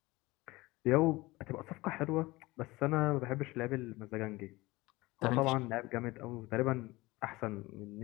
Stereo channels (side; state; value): right; quieter; 20.9 dB